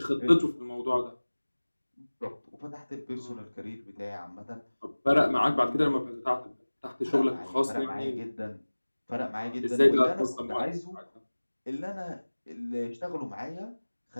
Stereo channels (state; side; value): inverted; both; correlation -1.00